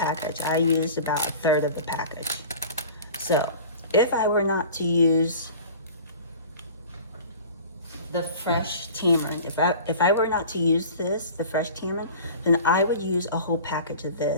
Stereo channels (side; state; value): both; inverted; correlation -0.41